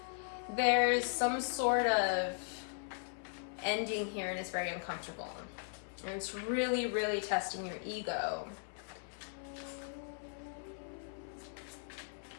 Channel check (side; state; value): right; silent; 52 dB below the other